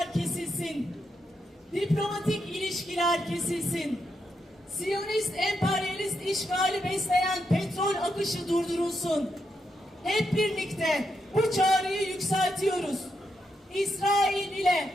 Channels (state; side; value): normal; both; correlation 0.82